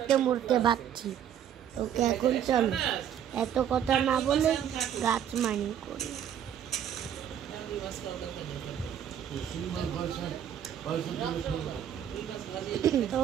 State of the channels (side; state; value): left; quieter; 9.5 dB